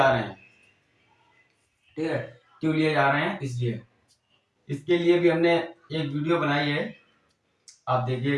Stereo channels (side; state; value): both; identical; correlation 1.00